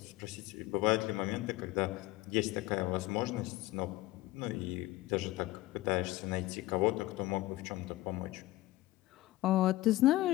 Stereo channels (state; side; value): quieter; right; 17.7 dB